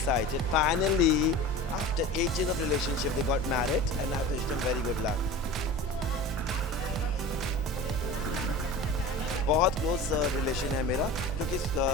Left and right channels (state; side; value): normal; both; correlation 0.35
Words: finally after 8 years of relationship they got married and I wish them very good luck बहुत क्लोज रिलेशन है मेरा क्योंकि